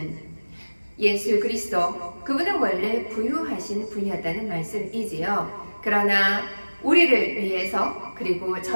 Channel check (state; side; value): inverted; both; correlation -1.00